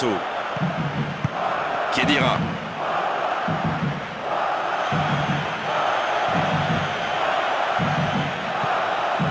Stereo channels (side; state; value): both; identical; correlation 1.00